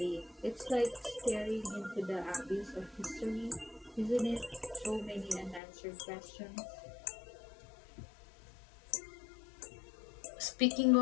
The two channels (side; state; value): right; drops out; at 5.6 s